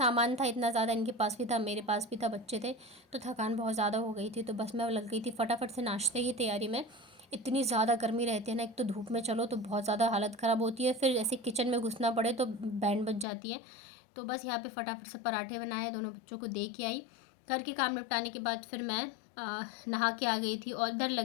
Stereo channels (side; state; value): right; drops out; at 13.2 s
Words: था इतना ज़्यादा, इनके पास भी था मेरे पास भी था, बच्चे थे, तो थकान बहुत ज़्यादा हो गई थी। तो बस मैं लग गई थी फटाफट से नाश्ते की तैयारी में। इतनी ज़्यादा गर्मी रहती है ना, एक तो धूप में चलो तो बहुत ज़्यादा हालत ख़राब होती है, फिर ऐसे किचन में घुसना पड़े तो बैंड बज जाती है। तो बस यहाँ पे फटाफट से पराठे बनाए, दोनों बच्चों को दे के आई। घर के काम निपटाने के बाद फिर मैं नहा के आ गई थी और इधर